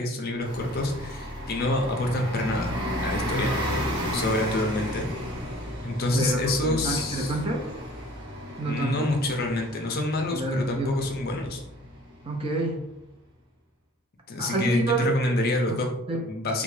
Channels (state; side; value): normal; both; correlation 0.50